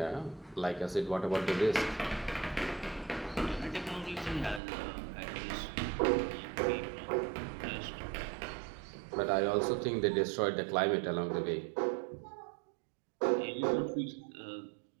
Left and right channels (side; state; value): left; drops out; at 4.6 s